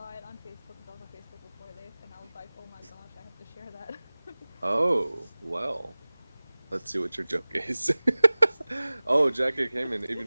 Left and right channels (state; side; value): inverted; both; correlation -1.00